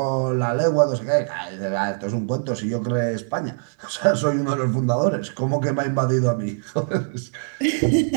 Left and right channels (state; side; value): silent; left; 64 dB below the other